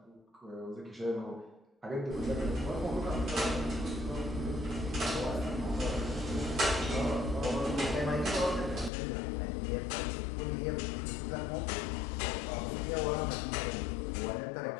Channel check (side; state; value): right; drops out; at 8.9 s